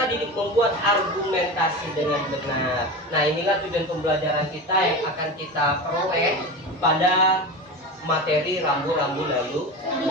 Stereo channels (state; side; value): normal; both; correlation 0.27